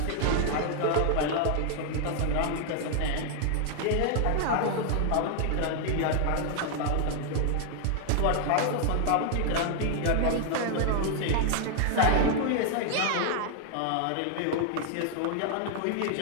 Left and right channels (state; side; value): different; both; correlation 0.00